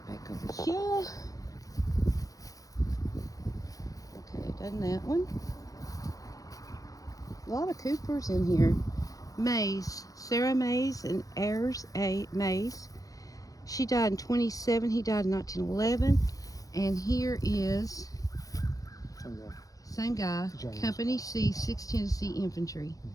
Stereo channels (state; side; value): late; right; 0.17 ms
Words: back over here. Okay, done that one. A lot of Coopers in here. Mays, Sarah Mays and Ayers A. Mays. She died in 27. He died in 1911. And here is same guy, James. Company C, 6th Tennessee Infantry.